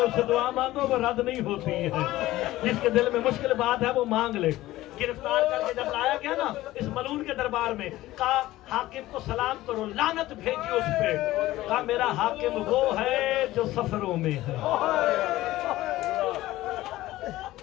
اسے دعا مانگو, وہ رد نہیں ہوتی ہے. جس کے دل میں مشکل بات ہے وہ مانگ لے. گرفتار کر کے جب لایا گیا نا اس ملون کے دربار میں, کہا حاکم کو سلام کرو, لعنت بھیجی اس پہ. کہا میرا حاکم وہ ہے جو سفروں میں ہے.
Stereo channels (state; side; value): quieter; right; 16.4 dB